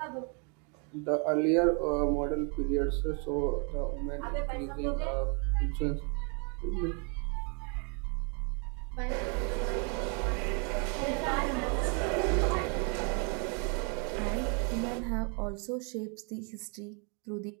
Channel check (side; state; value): left; quieter; 37.0 dB